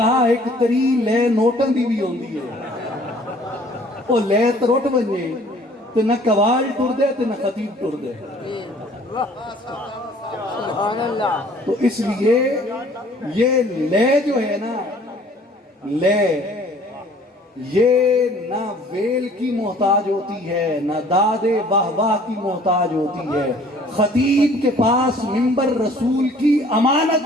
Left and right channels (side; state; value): both; normal; correlation 0.54